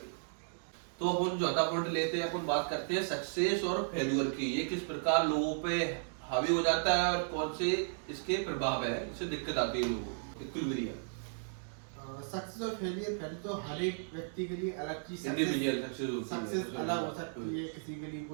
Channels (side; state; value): left; silent; digital silence